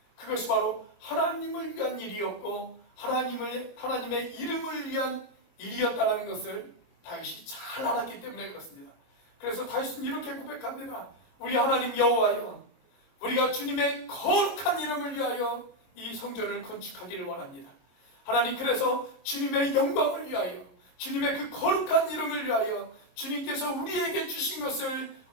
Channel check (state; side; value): late; right; 23 ms